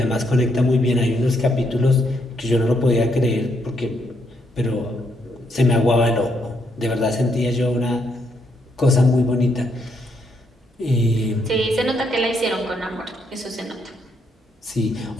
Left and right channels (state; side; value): normal; both; correlation 0.75